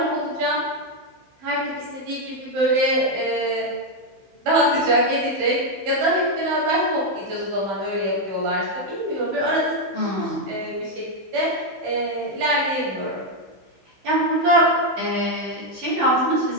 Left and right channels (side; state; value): left; late; 15 ms